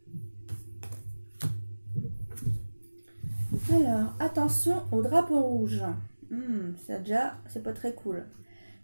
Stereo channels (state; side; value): inverted; both; correlation -1.00